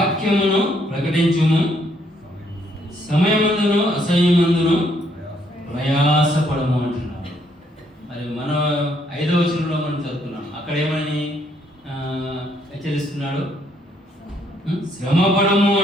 ప్రకటించుము, సమయమందును అసహ్యమందును ప్రయాసపడము అంటున్నాడు. మరి మనం 5వ వచనంలో మనం చదువుతున్నాం, అక్కడ ఏమని హెచ్చరిస్తున్నాడు? శ్రమపడము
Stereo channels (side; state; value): both; normal; correlation 0.70